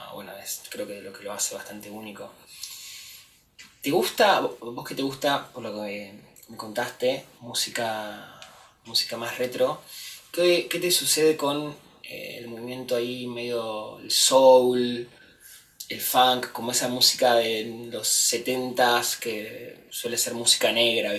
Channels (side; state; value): both; identical; correlation 1.00